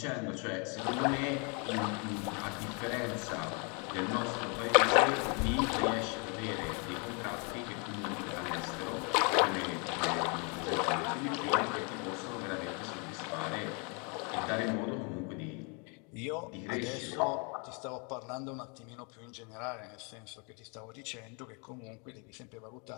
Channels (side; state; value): right; quieter; 34.7 dB